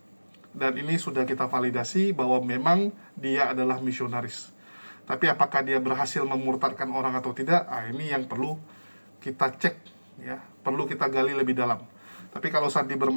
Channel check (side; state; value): both; inverted; correlation -1.00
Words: Dan ini sudah kita validasi bahwa memang dia adalah misionaris. Tapi apakah dia berhasil memurtadkan orang atau tidak? Ini yang perlu kita cek ya, perlu kita gali lebih dalam. Tapi kalau Sandi